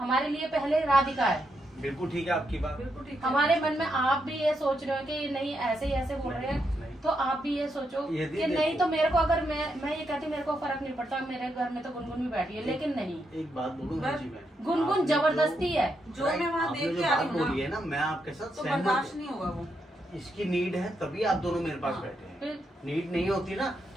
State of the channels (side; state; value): both; normal; correlation 0.81